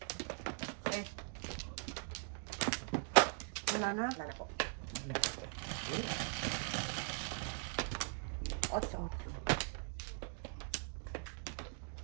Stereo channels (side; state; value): left; silent; 50 dB below the other